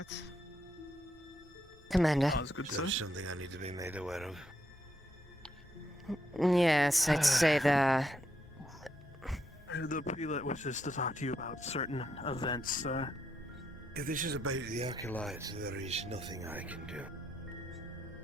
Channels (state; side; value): normal; both; correlation 0.78